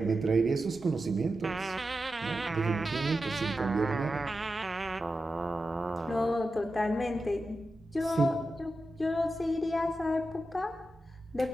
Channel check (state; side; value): normal; both; correlation 0.91